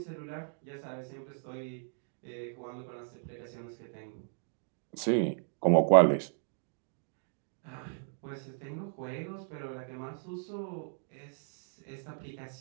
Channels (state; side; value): silent; left; digital silence